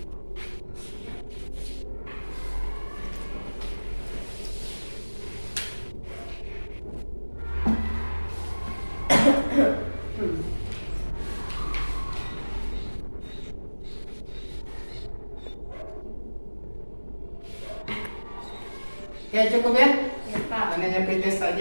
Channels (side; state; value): both; inverted; correlation -1.00